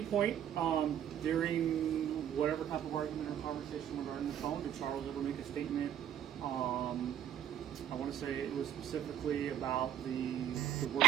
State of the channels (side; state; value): left; quieter; 10.0 dB